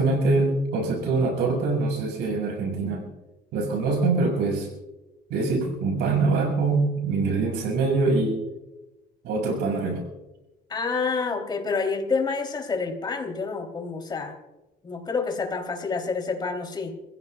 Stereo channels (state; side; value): normal; both; correlation 0.48